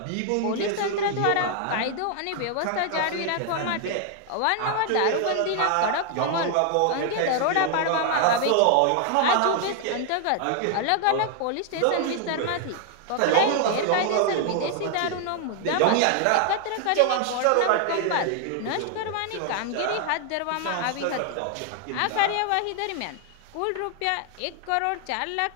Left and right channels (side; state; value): both; different; correlation 0.00